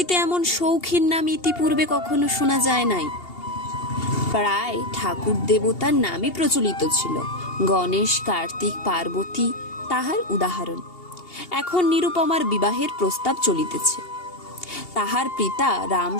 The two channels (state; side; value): late; right; 2.8 ms